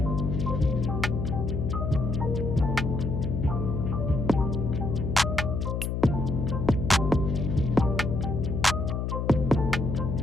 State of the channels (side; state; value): left; noise; hum, 1 dB below the sound